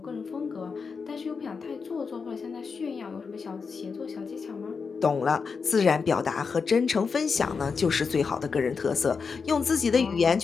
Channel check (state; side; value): quieter; right; 5.3 dB